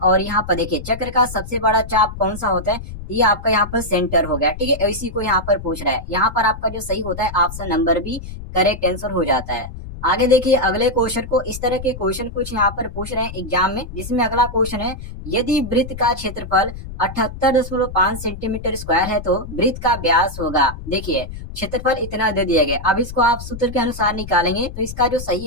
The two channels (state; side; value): noise; left; rumble, 11 dB below the sound